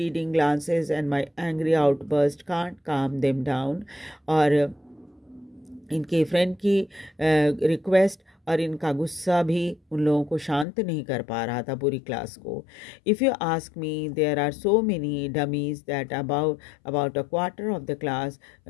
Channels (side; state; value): right; drops out; at 10.7 s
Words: glances and my angry outburst can't calm them down. और इनके फ्रेंड की रिक्वेस्ट और इनका गुस्सा भी उन लोगों को शांत नहीं कर पा रहा था पूरी क्लास को। If you ask me, there are so many dummies that about a quarter of the class